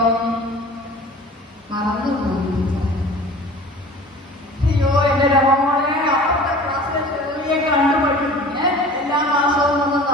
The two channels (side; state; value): both; normal; correlation 0.42